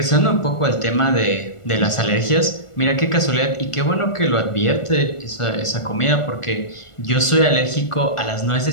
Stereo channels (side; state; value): right; late; 1.4 ms